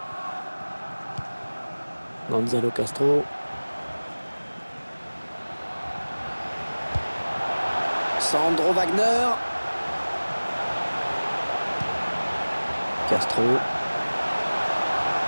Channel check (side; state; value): both; inverted; correlation -1.00